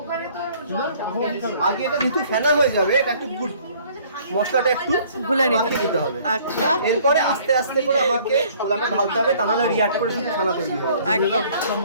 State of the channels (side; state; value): both; inverted; correlation -0.57